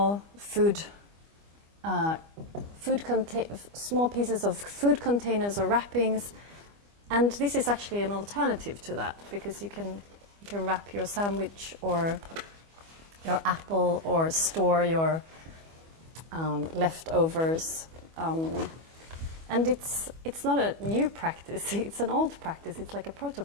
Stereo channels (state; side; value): late; left; 25 ms